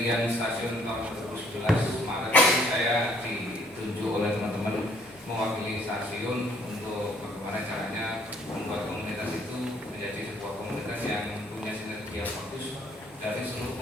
stasiun tahun 2011 Maret ini saya ditunjuk oleh teman-teman mewakili stasiun untuk bagaimana caranya membuat komunitas itu menjadi sebuah komunitas yang punya sinergi yang bagus dari seluruh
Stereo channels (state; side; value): normal; both; correlation 0.63